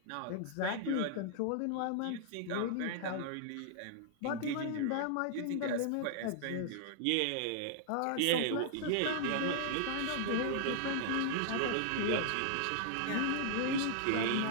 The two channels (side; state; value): both; different; correlation -0.01